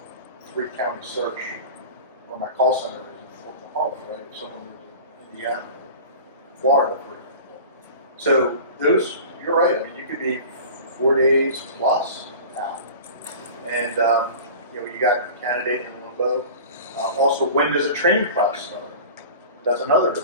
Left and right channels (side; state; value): both; inverted; correlation -0.37